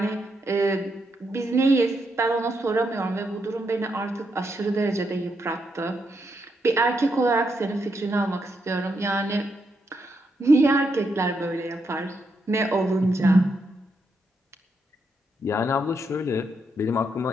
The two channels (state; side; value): normal; both; correlation 0.80